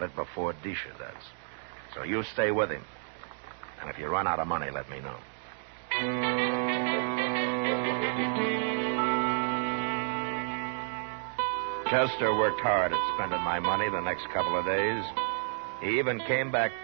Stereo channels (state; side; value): silent; left; digital silence